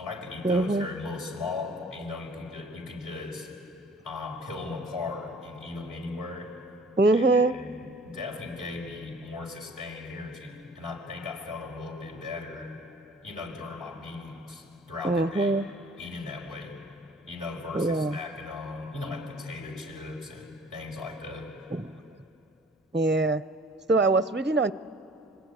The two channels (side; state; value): both; normal; correlation 0.51